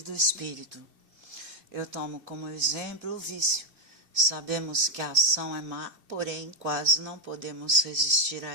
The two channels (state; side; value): late; left; 2.7 ms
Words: do Espírito. Eu tomo como exemplo o vício. Sabemos que a ação é má, porém quase não podemos resistir a